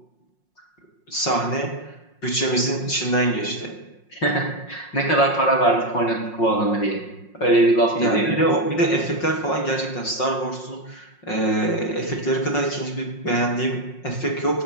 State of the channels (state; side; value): late; right; 5.5 ms